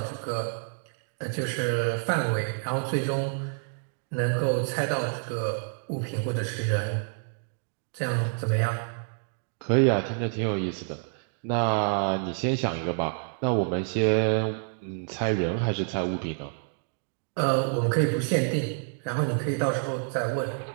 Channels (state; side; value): silent; left; 56 dB below the other